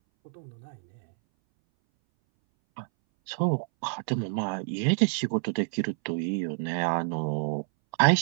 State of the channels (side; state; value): left; silent; 59 dB below the other